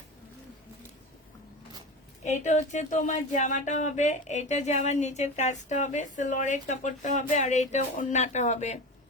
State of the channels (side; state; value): both; normal; correlation 0.27